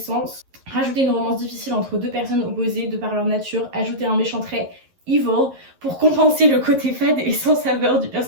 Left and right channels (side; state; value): left; late; 11 ms